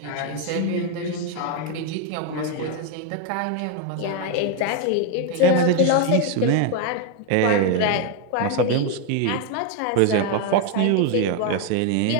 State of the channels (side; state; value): both; different; correlation 0.01